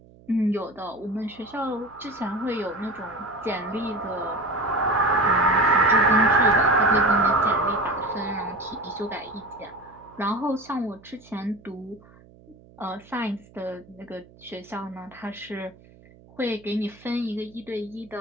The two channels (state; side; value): noise; right; hum, 25 dB below the sound